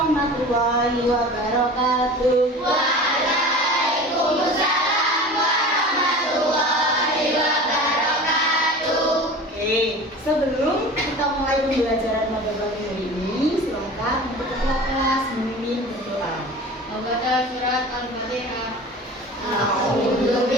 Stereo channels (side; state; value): both; normal; correlation 0.37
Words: wabarakatuh. Waalaikumsalam warahmatullahi wabarakatuh. Oke, sebelum kita mulai pembelajaran pada pagi hari ini, silakan untuk ketua kelas memimpin berdoa. Membaca surat Al-Fatihah. A'udzu